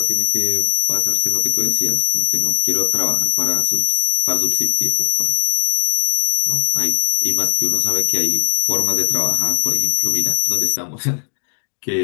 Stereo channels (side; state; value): right; silent; digital silence